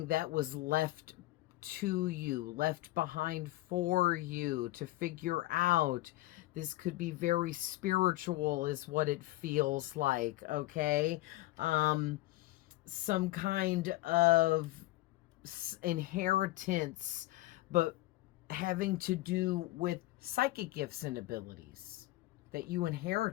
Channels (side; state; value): right; quieter; 17.9 dB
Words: that was left to you, left behind for you to figure out. This could be very spiritual is what it feels like, okay? Some kind of inheritance, but having to do with psychic gifts and abilities that you